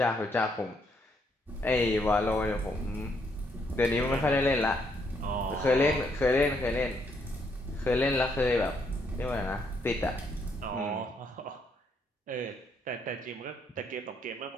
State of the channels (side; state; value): both; normal; correlation 0.73